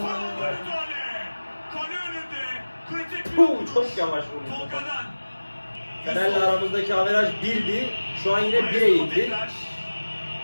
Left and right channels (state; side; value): inverted; both; correlation -1.00